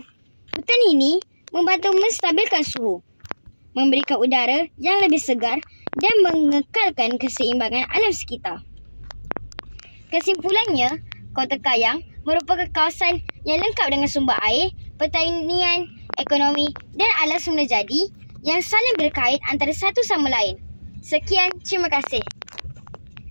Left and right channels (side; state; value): both; inverted; correlation -1.00